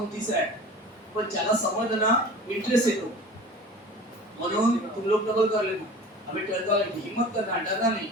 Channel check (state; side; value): normal; both; correlation 0.39